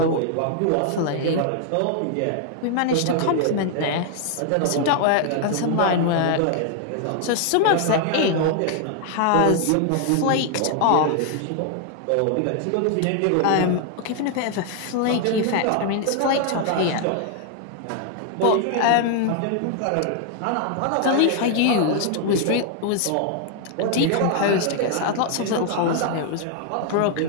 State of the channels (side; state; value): both; different; correlation 0.00